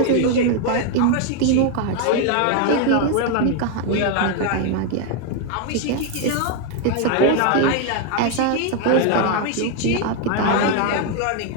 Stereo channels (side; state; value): both; different; correlation 0.01